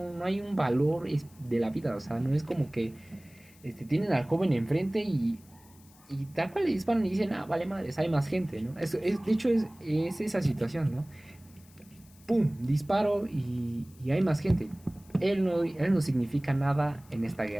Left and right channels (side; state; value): left; noise; hiss, 27 dB below the sound